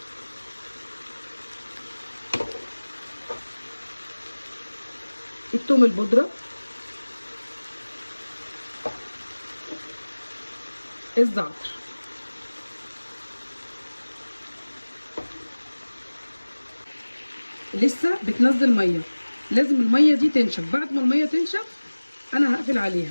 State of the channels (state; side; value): inverted; both; correlation -1.00